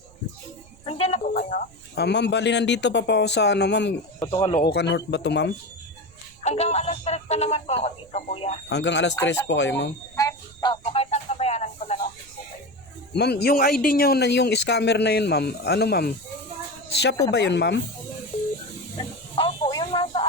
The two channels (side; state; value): right; noise; rumble, 25 dB below the sound